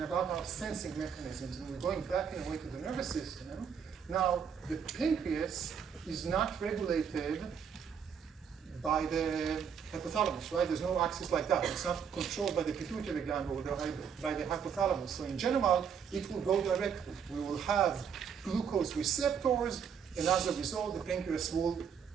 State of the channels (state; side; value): quieter; left; 7.3 dB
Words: about our sensing mechanisms. And we're going back in a way to the nervous system. Now, the pancreas is not regulated by the hypothalamus, right? There's no axis like that. It's not controlled by the pituitary gland or by the hypothalamus. So in general, it will go directly. We will have glucose receptors, and as a result, the pancreas will